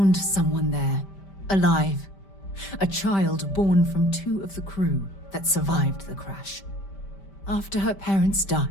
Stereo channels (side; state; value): right; late; 5.1 ms